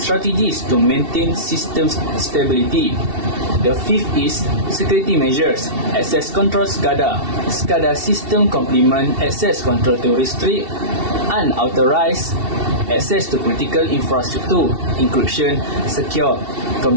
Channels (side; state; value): left; late; 2.7 ms